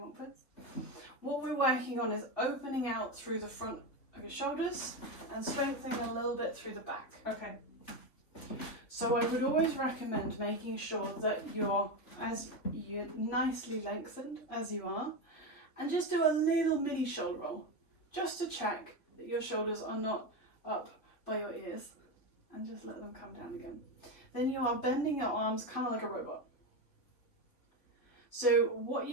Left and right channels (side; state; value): right; late; 3.5 ms